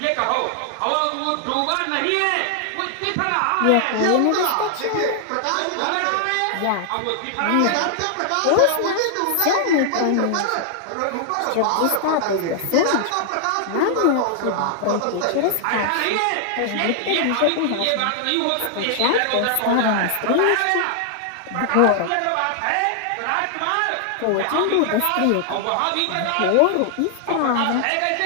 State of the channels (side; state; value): both; different; correlation 0.00